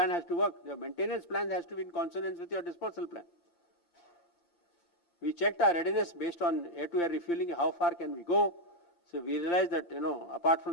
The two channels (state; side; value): late; right; 5.8 ms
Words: has to work. Your maintenance plan has to be in consonance with your dispersal plan. We checked our readiness based on air-to-air refueling, how far can we go. So we realized that, apart